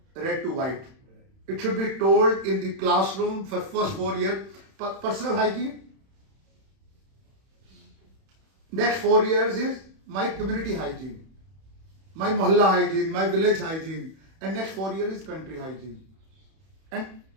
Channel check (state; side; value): late; left; 31 ms